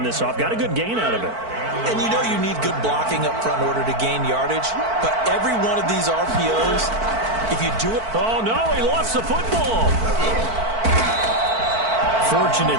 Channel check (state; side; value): late; left; 4.5 ms